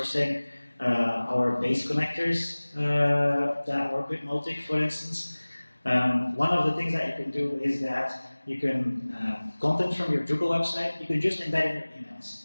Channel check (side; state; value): both; inverted; correlation -1.00